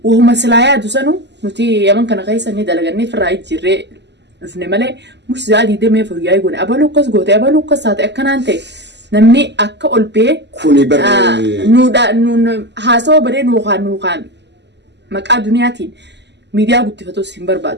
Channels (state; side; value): late; left; 0.50 ms